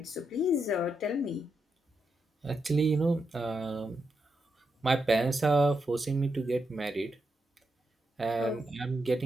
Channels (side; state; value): both; normal; correlation 0.84